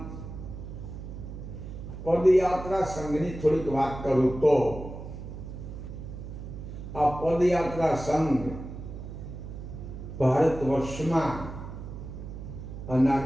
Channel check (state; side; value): noise; right; hum, 10 dB below the sound